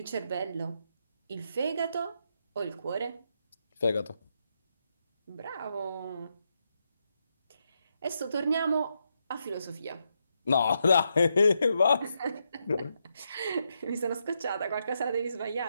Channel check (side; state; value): both; inverted; correlation -0.82